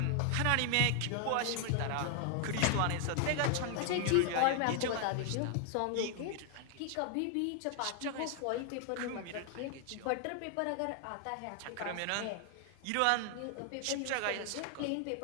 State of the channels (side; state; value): both; different; correlation 0.00